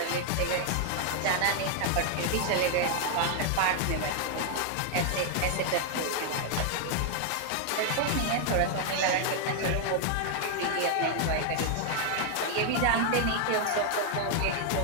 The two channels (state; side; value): different; both; correlation 0.00